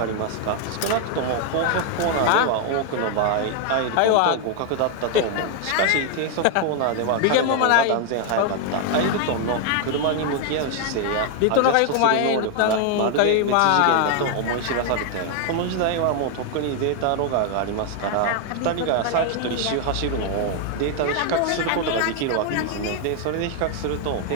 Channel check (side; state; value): both; different; correlation 0.00